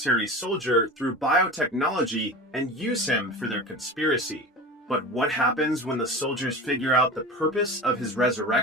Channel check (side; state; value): both; normal; correlation 0.31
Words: soldier through biotechnology and use him for their conspiracy. But what happens when the soldiers figure out the purpose of his